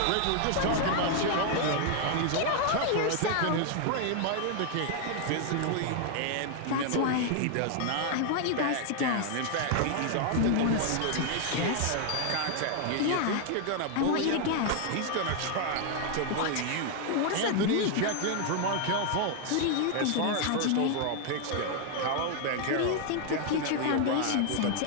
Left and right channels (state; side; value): different; both; correlation 0.00